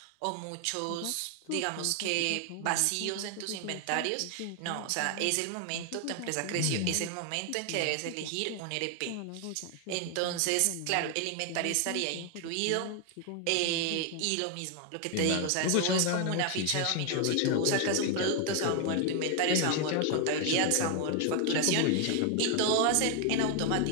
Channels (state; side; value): different; both; correlation 0.00